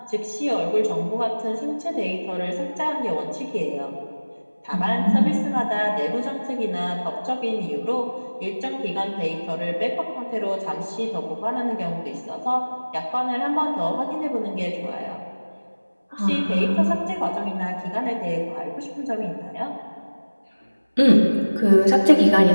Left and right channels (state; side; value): inverted; both; correlation -1.00